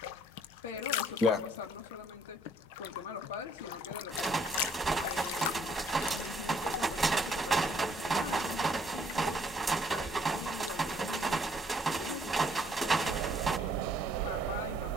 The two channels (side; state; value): both; normal; correlation 0.64